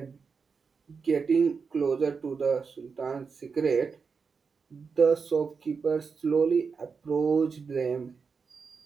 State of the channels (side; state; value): left; quieter; 5.3 dB